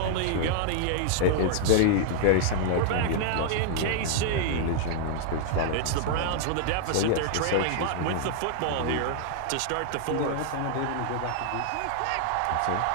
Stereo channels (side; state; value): both; different; correlation -0.01